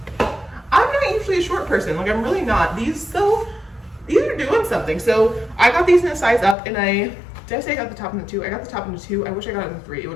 I'm not usually a short person, like I'm really not. These though, these are doing something. So I got these in a size up, and did I say I got the top in the 2? I got the top in the 2. I wish I got it in the 3. It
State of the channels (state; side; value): drops out; right; at 6.6 s